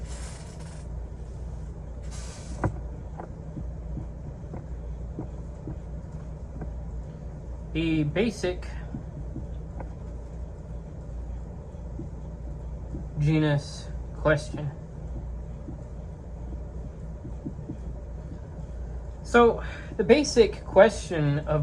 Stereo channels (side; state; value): both; identical; correlation 1.00